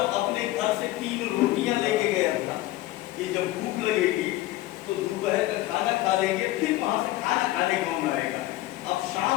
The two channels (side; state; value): right; quieter; 16.7 dB